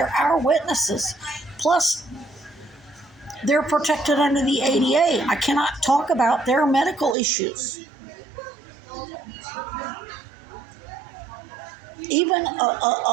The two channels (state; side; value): drops out; left; at 7.2 s